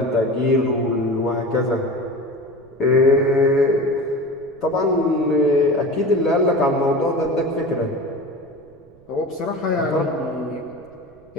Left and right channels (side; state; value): right; noise; rumble, 29 dB below the sound